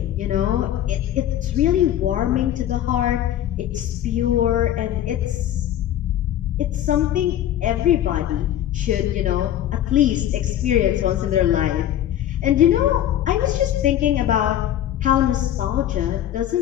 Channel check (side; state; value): right; quieter; 11.7 dB